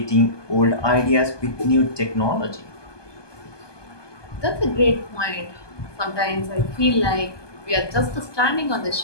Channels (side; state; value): right; late; 1.2 ms